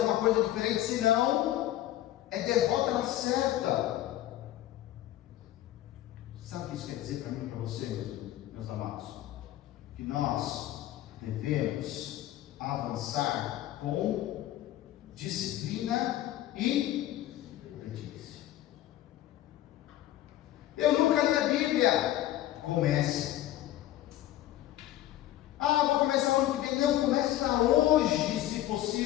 coisa diferente, senão é derrota na certa. Sabe o que isso quer dizer para mim e para você, meus amados? Que nós devemos avançar com disciplina e obediência. Eu nunca li a Bíblia. Comece. Vou começar ano que vem. Não, começa hoje, se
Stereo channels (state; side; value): quieter; right; 13.9 dB